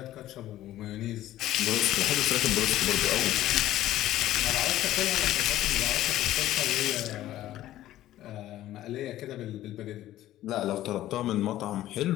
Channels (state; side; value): quieter; right; 14.0 dB